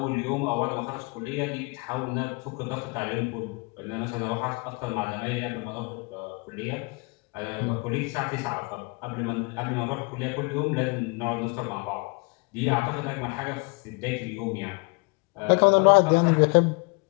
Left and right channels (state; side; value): quieter; right; 30.1 dB